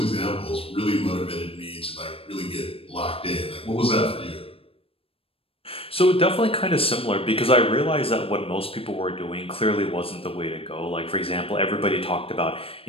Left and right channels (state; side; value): late; right; 0.27 ms